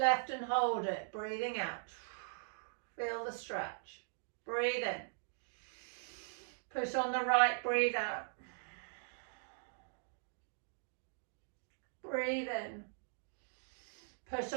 and hold it. Breathing out. Feel the stretch. Breathe in. Push on the right. Breathe out. Breathe in. Push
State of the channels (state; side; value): silent; left; digital silence